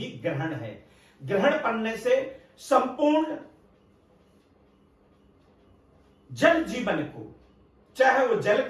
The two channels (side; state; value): both; identical; correlation 1.00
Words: ग्रहण है। ग्रहण पड़ने से संपूर्ण जल जीवन को, चाहे वो जल